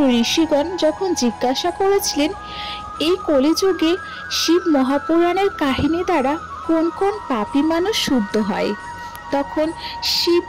ঋষিগণ যখন জিজ্ঞাসা করেছিলেন এই কলিযুগে শিব মহাপুরাণের কাহিনী দ্বারা কোন কোন পাপী মানুষ শুদ্ধ হয়, তখন শিব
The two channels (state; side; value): identical; both; correlation 1.00